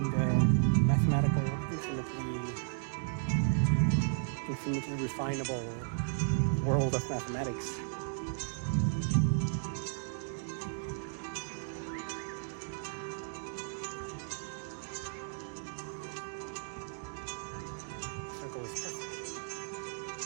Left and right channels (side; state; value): left; silent; digital silence